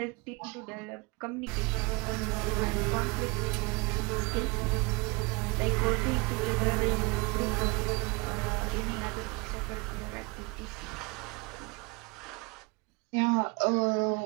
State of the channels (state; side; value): quieter; left; 27.2 dB